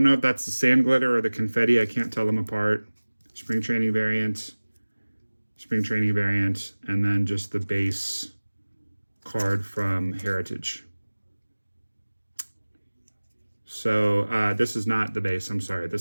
know if that's the sand glitter or the confetti. I can't tell them apart. Spring training variant, and then just the base card from Heritage. So this is not the base, I'm sorry.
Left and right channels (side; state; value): both; inverted; correlation -1.00